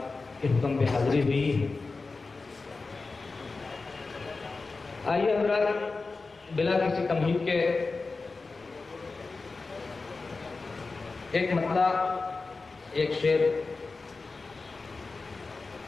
के हुक्म पे हाज़री हुई। आइए हज़रात, बिला किसी तमहीद के एक मतला, एक शेर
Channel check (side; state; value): right; quieter; 3.9 dB